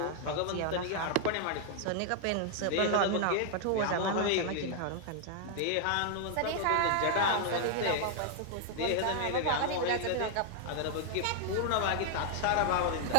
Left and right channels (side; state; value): both; different; correlation 0.00